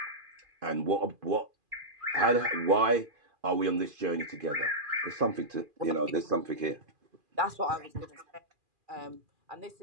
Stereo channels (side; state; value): left; late; 2.5 ms